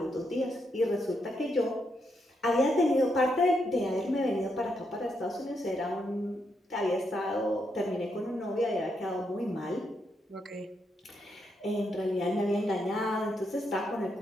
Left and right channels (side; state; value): both; normal; correlation 0.80